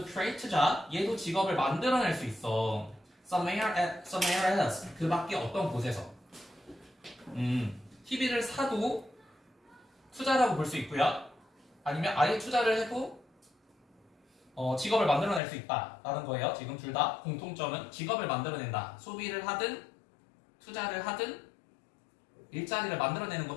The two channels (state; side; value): drops out; right; at 15.4 s